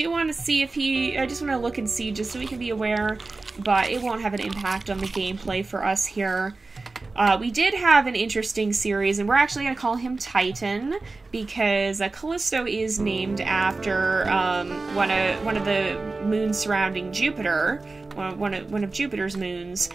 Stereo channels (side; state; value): left; quieter; 3.6 dB